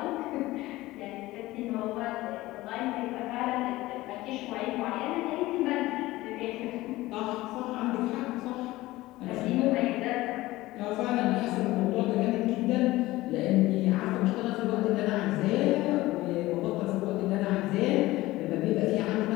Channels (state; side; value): quieter; right; 18.2 dB